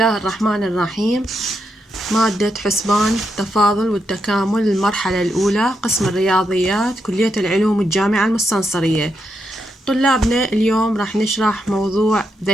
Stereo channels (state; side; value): normal; both; correlation 0.82